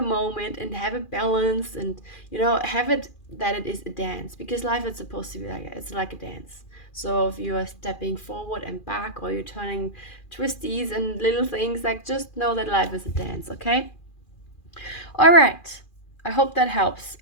moment and have a balance and, have it that it is a dance, because life is supposed to be like, it's like a dance. So if you are stepping forward and back, or you're turning twisties and little things, like just know that life is a dance, okay? All right. I hope that helps.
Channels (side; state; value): right; late; 2.4 ms